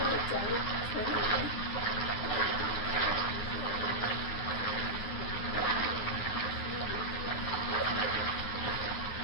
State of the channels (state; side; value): late; right; 9.8 ms